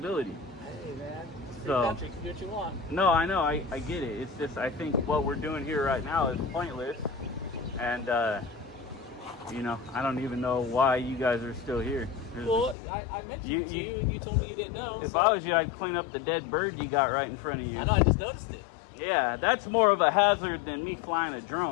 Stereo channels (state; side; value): drops out; right; at 12.8 s